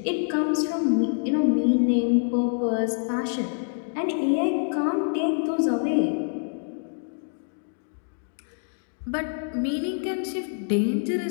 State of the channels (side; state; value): right; silent; digital silence